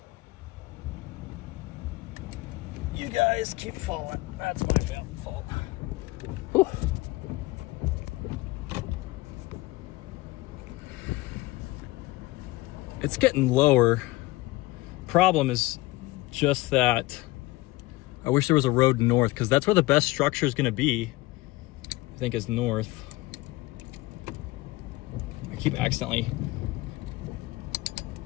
You guys keep falling. That's my fault. Whew. It's getting lower. Problem is just that I wish there was a road north, because that's where the best structure is going to be. I think is north. I keep accidentally.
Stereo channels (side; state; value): right; quieter; 20.1 dB